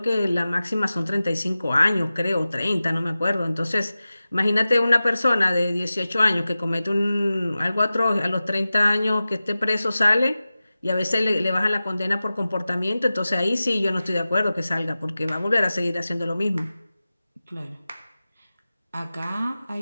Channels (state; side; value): inverted; both; correlation -0.96